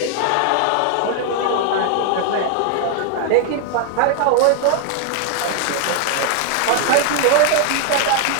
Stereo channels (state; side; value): different; both; correlation 0.00